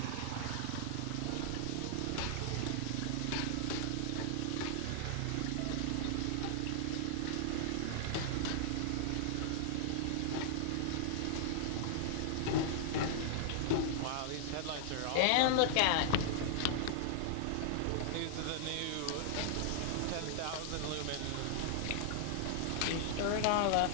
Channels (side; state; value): both; different; correlation -0.01